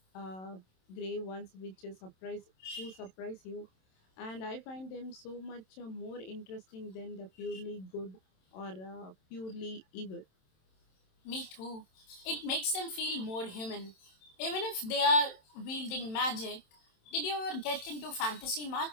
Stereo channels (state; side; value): late; right; 27 ms